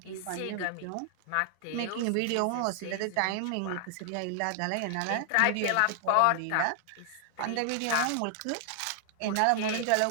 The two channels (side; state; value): both; different; correlation 0.00